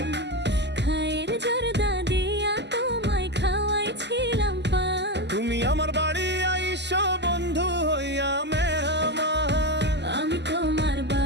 খায়ের জর্দা দিয়া তোমায় খাওয়াইছিলাম পান। তুমি আমার বাড়ি আইসো বন্ধু হইয়া মেহমান, আমি তোমার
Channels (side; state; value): left; late; 0.50 ms